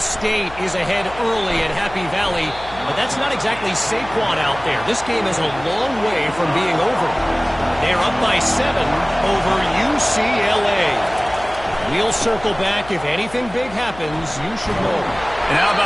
is ahead early at Happy Valley, but that's not exactly Saquon out there. This game is a long way from being over. They're up by 7 over UCLA. We'll circle back. If anything big happens, you should know. And how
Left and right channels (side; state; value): left; noise; hum, 17 dB below the sound